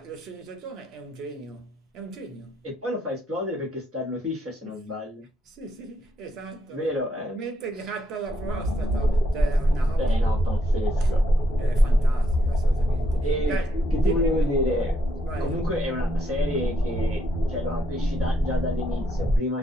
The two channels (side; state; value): both; normal; correlation 0.76